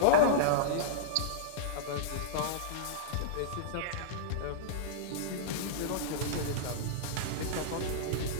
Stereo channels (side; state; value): both; different; correlation -0.03